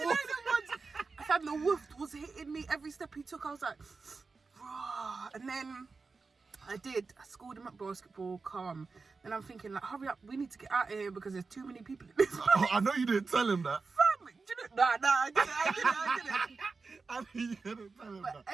I found the wolf was hitting me every step he took. I was like, raw. And then I schooled him at basketball, calm. Then I'm thinking, like, hurry up, we need to get out of here because there's too many people in this place. Oh, I know you didn't tell him that. Nah, I didn't. I know you didn't tell him But that.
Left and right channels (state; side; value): quieter; left; 4.3 dB